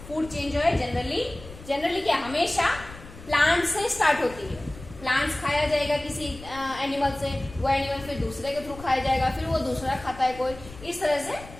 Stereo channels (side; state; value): left; noise; rumble, 16 dB below the sound